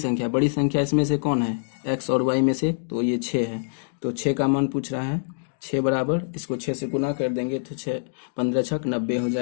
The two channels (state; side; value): silent; right; digital silence